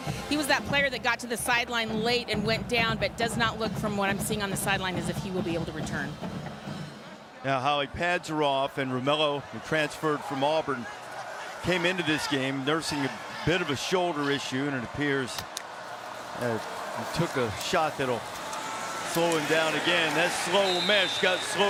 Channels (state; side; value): identical; both; correlation 1.00